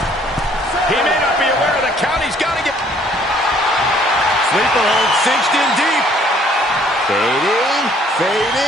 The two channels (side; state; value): both; normal; correlation 0.60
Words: He may not be aware of the count. He's got to get... Sleeper hold cinched in deep. Fading,